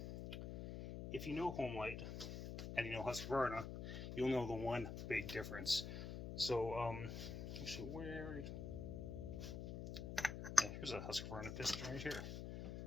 if you know homelite and you know Husqvarna, you'll know the one big difference. So, actually, here's a Husqvarna piston right here.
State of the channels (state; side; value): noise; left; hum, 5 dB below the sound